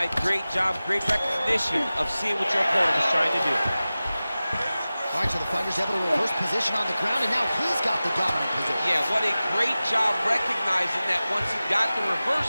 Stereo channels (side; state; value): both; inverted; correlation -0.96